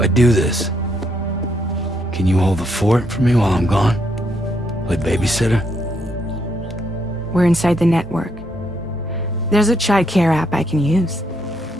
do this, can you hold the fort for me while I'm gone? Play babysitter? We're inside the network. There's a child care app I can use.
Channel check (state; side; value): normal; both; correlation 0.75